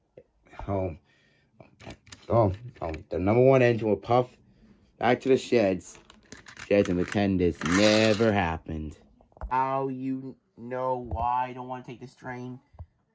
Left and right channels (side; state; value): both; identical; correlation 1.00